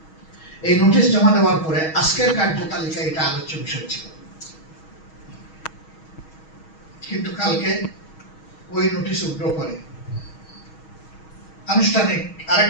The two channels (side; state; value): right; late; 6.3 ms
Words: এই নোটিশ জমা দেওয়ার পরে আজকের কার্যতালিকায় এটা আলোচ্য বিষয় ছিল, কিন্তু কালকে ওই নোটিশ উগ্র করে আনুষ্ঠানিক